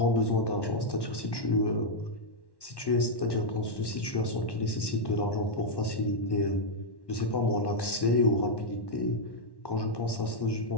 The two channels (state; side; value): late; right; 1.1 ms